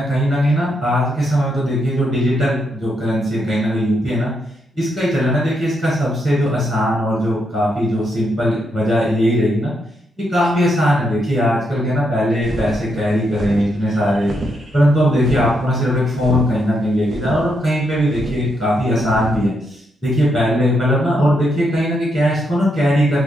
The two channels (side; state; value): both; normal; correlation 0.79